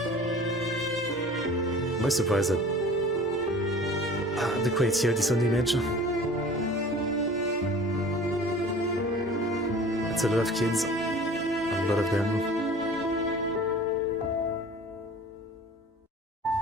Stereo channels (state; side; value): normal; both; correlation 0.44